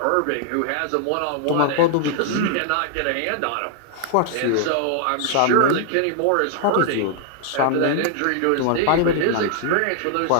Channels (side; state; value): both; different; correlation -0.01